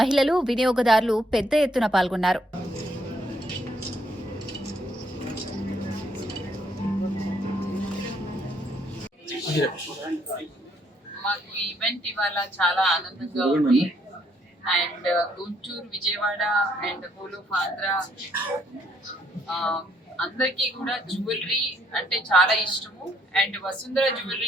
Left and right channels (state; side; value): normal; both; correlation 0.69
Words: మహిళలు, వినియోగదారులు పెద్ద ఎత్తున పాల్గొన్నారు. మాకు ఈవెంట్ ఇవాళ చాలా ఆనందంగా ఉంది. And Guntur, Vijayawada and whole of Andhra అందరికీ కూడా జ్యువెలరీ అంటే చాలా ఇష్టము. అండ్ వసుంధర